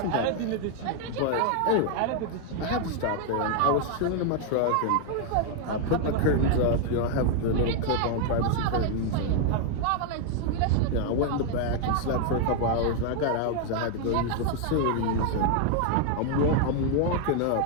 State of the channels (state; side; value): different; both; correlation 0.00